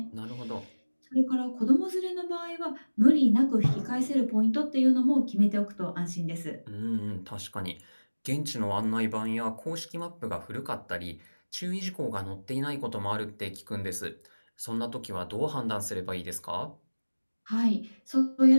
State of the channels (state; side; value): inverted; both; correlation -1.00